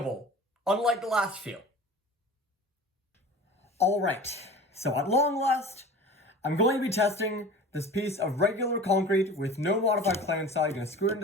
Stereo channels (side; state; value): both; normal; correlation 0.38